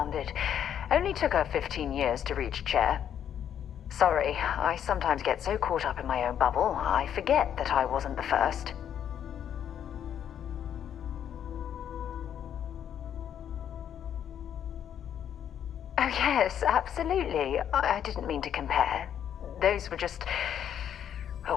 Only took her 15 years to reach chair. Sorry, I sometimes get so caught up in my own bubble, I forget that I wasn't the first. Oh yes, absolutely. I didn't mean to compare. Those were just... oh,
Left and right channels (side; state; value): right; quieter; 9.4 dB